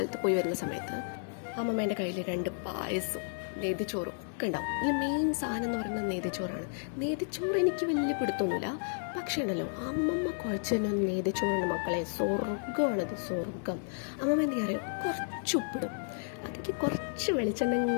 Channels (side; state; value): right; silent; digital silence